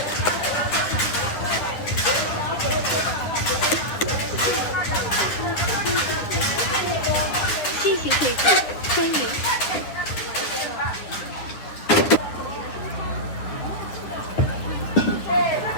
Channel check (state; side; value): late; right; 10 ms